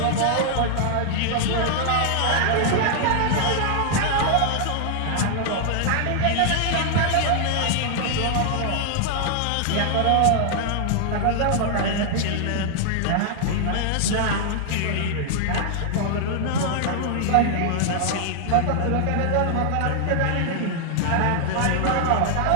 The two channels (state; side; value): different; both; correlation 0.00